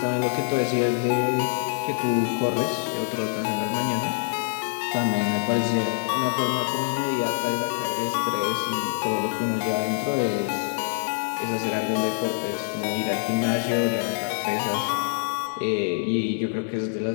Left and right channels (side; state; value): right; silent; 62 dB below the other